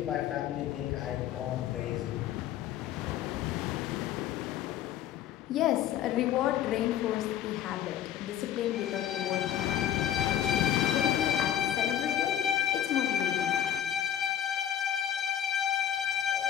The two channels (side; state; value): right; quieter; 10.5 dB